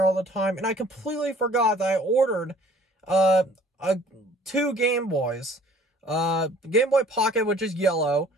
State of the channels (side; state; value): both; normal; correlation 0.53